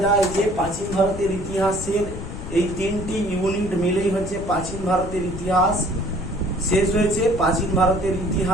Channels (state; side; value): noise; left; rumble, 9 dB below the sound